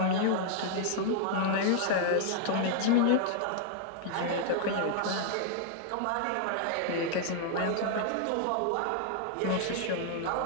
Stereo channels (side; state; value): both; different; correlation 0.00